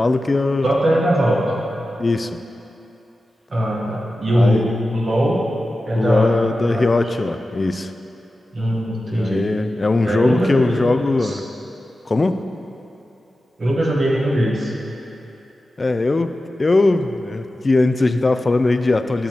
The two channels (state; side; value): normal; both; correlation 0.93